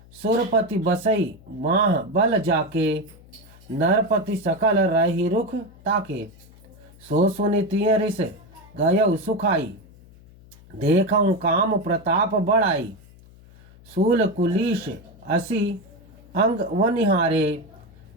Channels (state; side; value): noise; left; hum, 24 dB below the sound